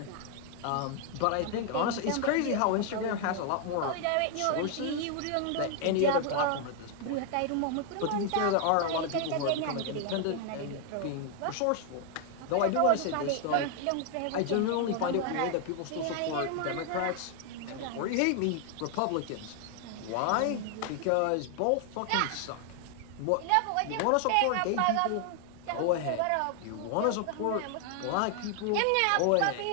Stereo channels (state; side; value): different; both; correlation 0.00